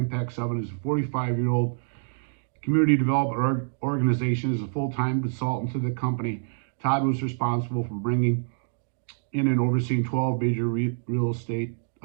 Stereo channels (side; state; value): left; silent; digital silence